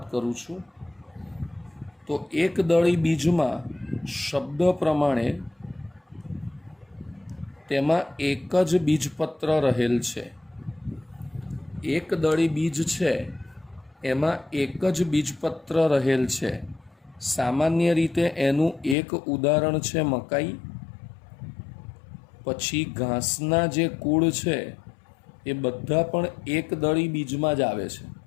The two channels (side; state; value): right; drops out; at 18.9 s